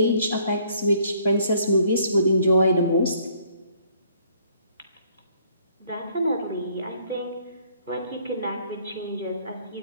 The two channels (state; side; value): inverted; both; correlation -0.63